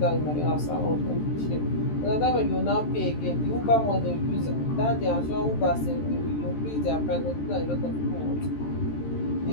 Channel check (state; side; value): late; right; 13 ms